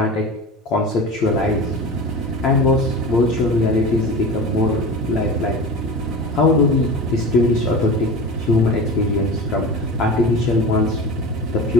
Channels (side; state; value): both; normal; correlation 0.31